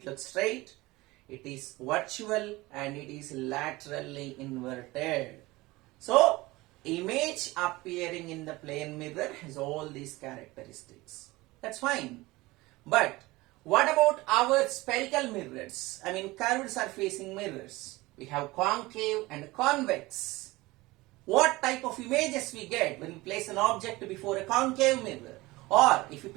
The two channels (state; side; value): quieter; left; 20.6 dB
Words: looks straight, it is virtual, and it is laterally inverted. So, image appearing in the plane mirror has all these characteristics. That's fine. But, what about our spherical mirrors? I mean, curved surfacing mirrors. We have concave and convex. What type of images we get when we place an object before a concave mirror? Or if you